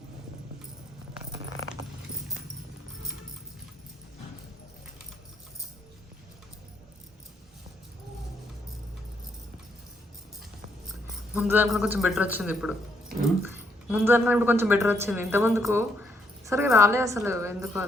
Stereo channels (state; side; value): normal; both; correlation 0.74